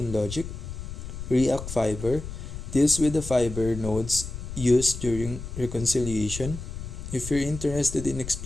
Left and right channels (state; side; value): noise; left; rumble, 8 dB below the sound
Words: logic. React Fiber deals with the fiber nodes used during reconciliation. If you're interested in